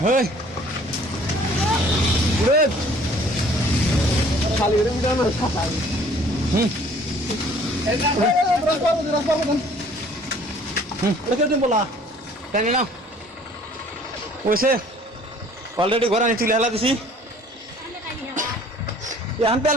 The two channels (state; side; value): normal; both; correlation 0.54